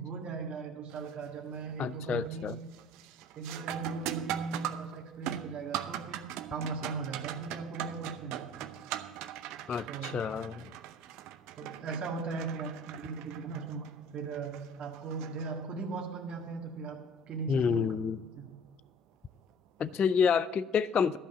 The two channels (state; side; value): normal; both; correlation 0.50